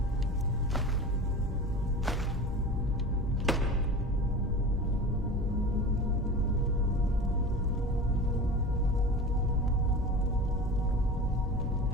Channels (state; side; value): normal; both; correlation 0.33